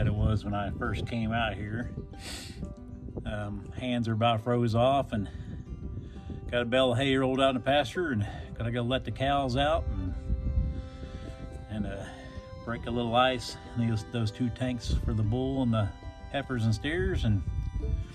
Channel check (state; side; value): identical; both; correlation 1.00